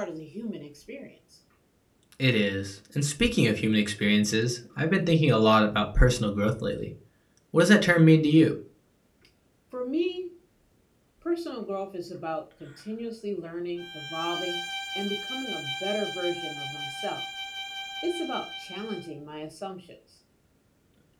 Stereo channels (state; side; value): identical; both; correlation 1.00